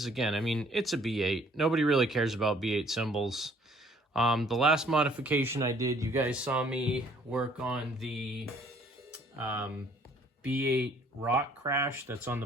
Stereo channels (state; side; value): normal; both; correlation 0.60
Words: Again, I mean, it's a B8. Nobody really cares about B8 cymbals. The last modification I did, you guys saw me work on the B8 Rock Crash that's on the